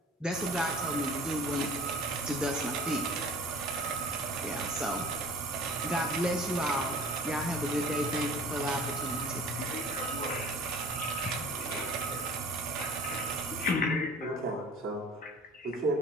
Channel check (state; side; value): normal; both; correlation 0.45